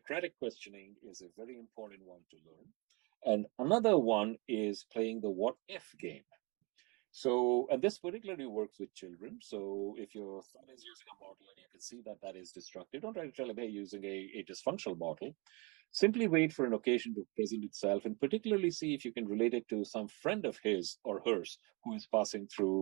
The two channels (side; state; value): left; quieter; 29.0 dB